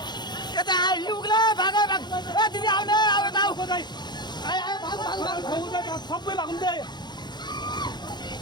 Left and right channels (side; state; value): right; late; 0.21 ms